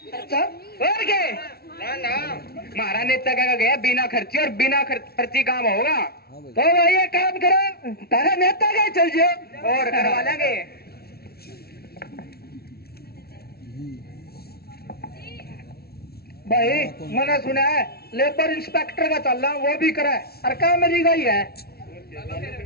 अच्छा और क्या? ना हमारा नेता क्या गया बिना खर्ची, और बिना खर्ची काम होगा। तो भाई ये काम करो, तारा नेता का चल जाओ और करवा लेंगे। भाई मैंने सुना है लेबर इंस्पेक्टर का चल रहा, वो भी करा है, और काम मेरी गई है।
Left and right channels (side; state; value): right; late; 0.45 ms